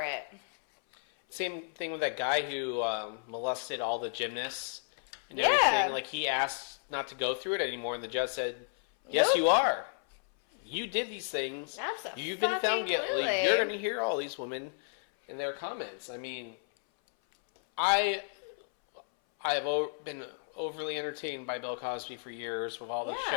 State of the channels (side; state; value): right; silent; 56 dB below the other